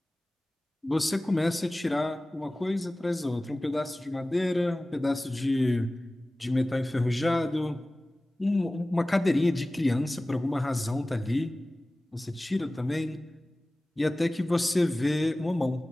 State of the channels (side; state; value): both; normal; correlation 0.98